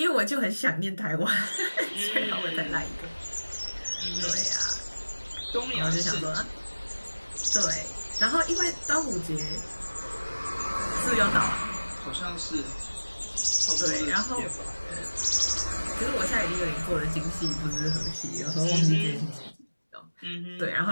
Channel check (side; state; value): both; inverted; correlation -1.00